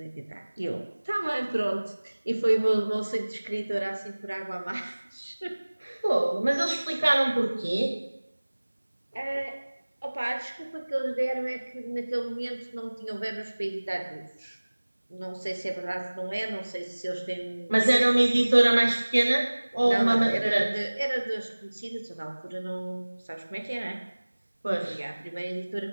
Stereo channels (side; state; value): both; inverted; correlation -1.00